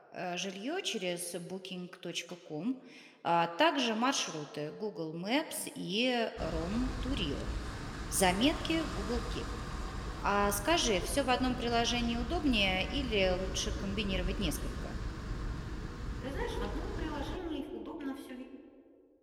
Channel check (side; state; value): both; identical; correlation 1.00